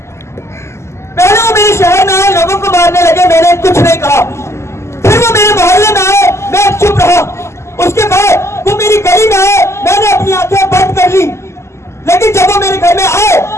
पहले वो मेरे शहर में आए, लोगों को मारने लगे, मैंने कुछ नहीं कहा। फिर वो मेरे मोहल्ले में आए, मैं चुप रहा। उसके बाद वो मेरी गली में आए, मैंने अपनी आंखें बंद कर ली। लेकिन जब वो मेरे घर में आए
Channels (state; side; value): late; right; 0.13 ms